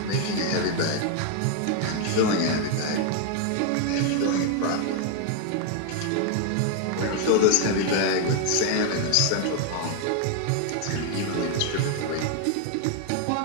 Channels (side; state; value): both; different; correlation 0.01